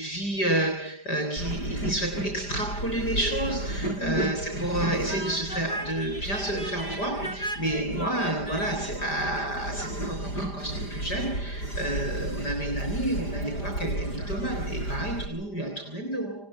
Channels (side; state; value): right; late; 5.0 ms